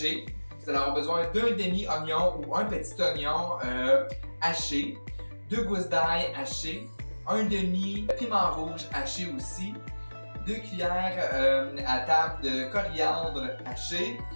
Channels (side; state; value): both; inverted; correlation -1.00